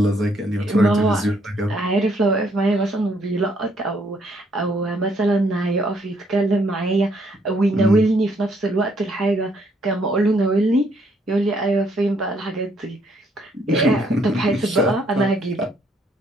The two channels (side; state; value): both; normal; correlation 0.69